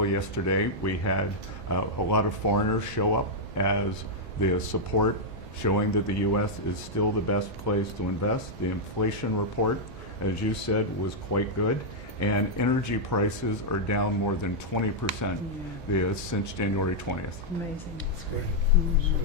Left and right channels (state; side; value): normal; both; correlation -0.04